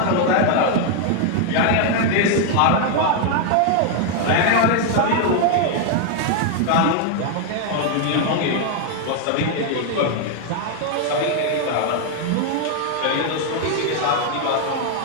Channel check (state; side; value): different; both; correlation 0.00